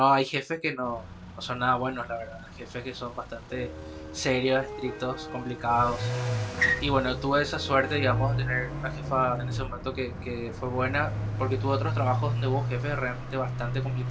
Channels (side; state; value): both; identical; correlation 1.00